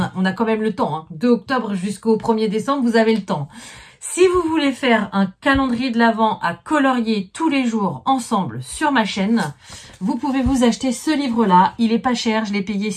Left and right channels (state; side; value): identical; both; correlation 1.00